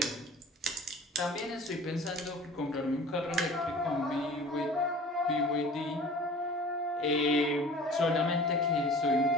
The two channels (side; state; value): both; normal; correlation 0.43